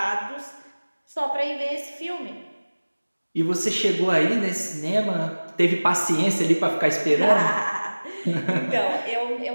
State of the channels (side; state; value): both; inverted; correlation -1.00